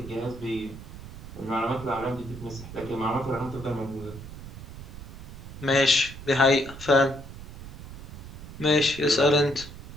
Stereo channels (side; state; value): right; noise; rumble, 13 dB below the sound